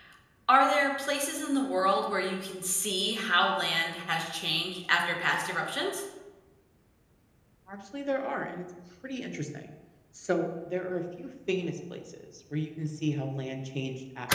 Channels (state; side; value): identical; both; correlation 1.00